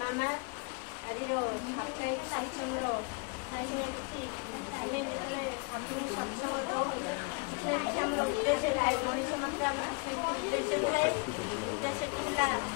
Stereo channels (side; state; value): right; quieter; 33.2 dB